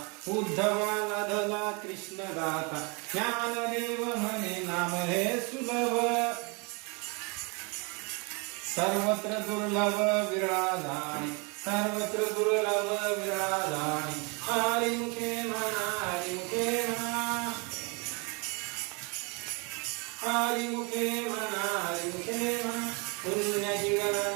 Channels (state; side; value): quieter; left; 31.5 dB